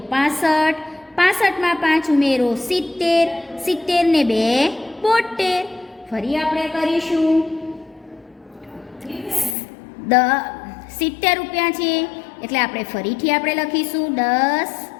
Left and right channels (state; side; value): drops out; right; at 9.6 s